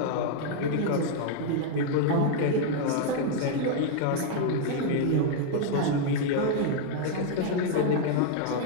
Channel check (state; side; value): different; both; correlation 0.00